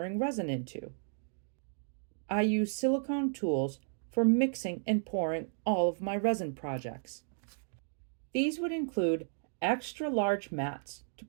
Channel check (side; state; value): left; silent; digital silence